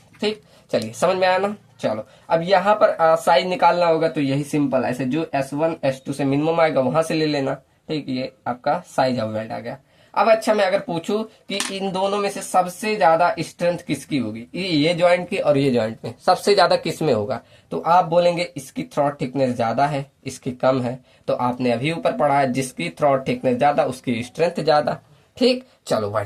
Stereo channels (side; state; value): both; identical; correlation 1.00